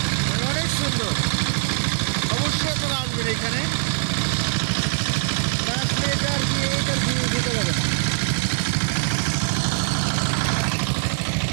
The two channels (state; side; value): silent; left; digital silence